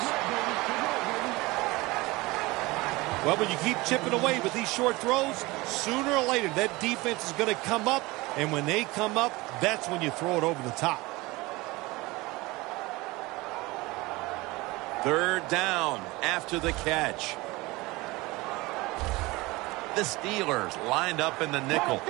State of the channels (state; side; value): quieter; left; 22.0 dB